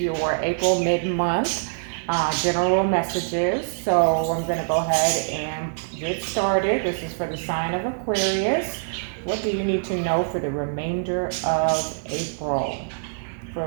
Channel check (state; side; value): silent; left; 62 dB below the other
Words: April mid-month general messages. So I'm going to go ahead and get started. This is for the sign of Aquarius. What do you need to know for the remainder of April? For